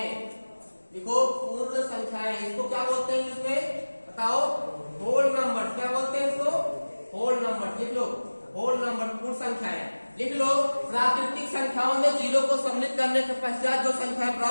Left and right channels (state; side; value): inverted; both; correlation -1.00